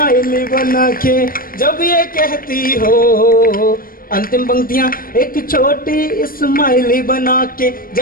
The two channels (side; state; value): right; late; 0.41 ms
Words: बना के जब ये कहती हो। अंतिम पंक्तियां, एक छोटी स्माइली बना के